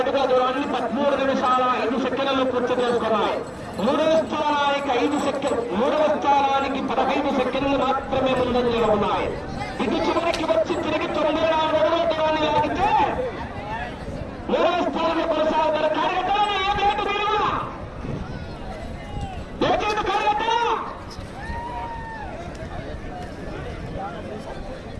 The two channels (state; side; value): identical; both; correlation 1.00